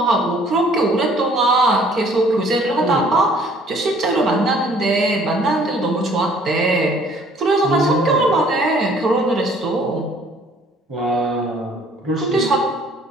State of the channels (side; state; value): both; normal; correlation 0.57